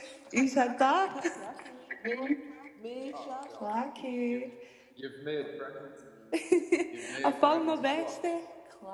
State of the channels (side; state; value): both; identical; correlation 1.00